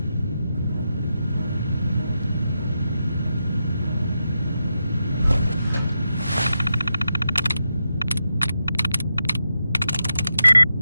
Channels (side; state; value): both; inverted; correlation -0.87